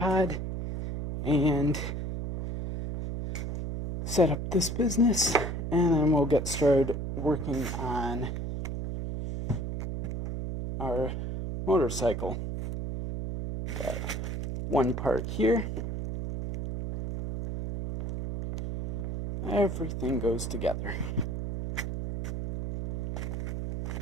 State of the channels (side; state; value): right; noise; hum, 4 dB below the sound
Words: and set up this business, and then we'll get started working on our motorcycle. Got one part here. Everything goes together.